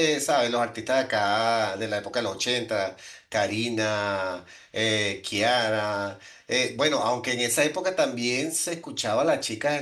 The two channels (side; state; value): both; identical; correlation 1.00